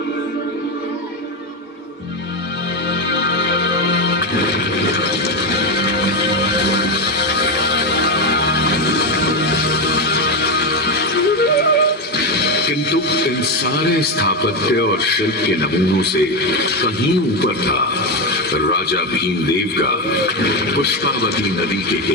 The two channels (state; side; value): normal; both; correlation 0.11